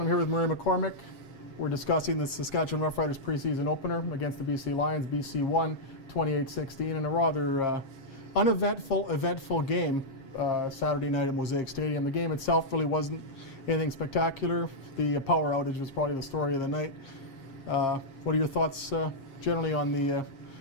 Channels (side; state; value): right; late; 7.4 ms